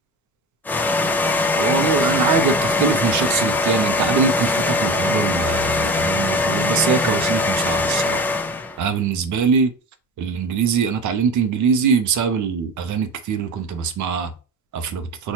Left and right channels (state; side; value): normal; both; correlation 0.31